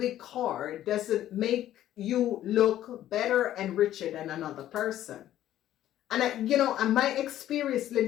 car doesn't make you look better and richer than another person. And and my experience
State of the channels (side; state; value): right; quieter; 12.6 dB